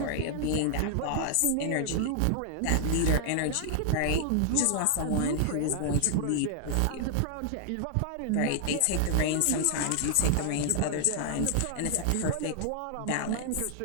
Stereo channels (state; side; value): different; both; correlation 0.00